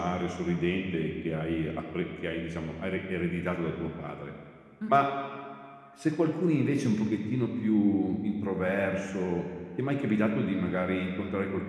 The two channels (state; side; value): identical; both; correlation 1.00